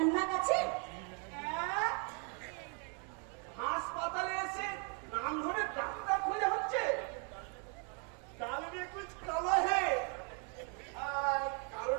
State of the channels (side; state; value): left; quieter; 38.3 dB